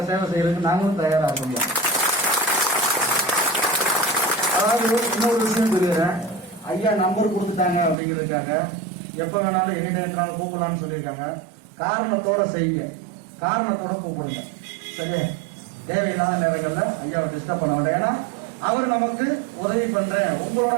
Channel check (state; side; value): drops out; left; at 8.0 s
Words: சேவை செய்யறதுக்கு நாங்களும் தயாராக முடியும். அதாவது இன்னொரு விஷயம் சொல்லிடுறேன், ஐயா நம்பர் கொடுத்துட்டாங்க அப்படிங்கிறதுக்காக எப்ப வேணாலும் எங்கிட்ட இருந்தாலும் கூப்பிடலாம்னு சொல்லியிருக்காங்க. காரணத்தோட செய்யுங்க, காரணத்தோட கூப்பிடுங்க, சரியா? தேவையில்லாத நேரங்கள்ல ஐயாவை டிஸ்டர்ப் பண்ண வேண்டாம். ஏன்னா அவர் நமக்கு உதவி பண்றேன், உங்களோட